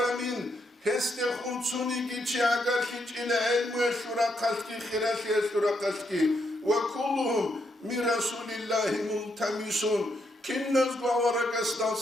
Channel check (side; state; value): both; normal; correlation 0.78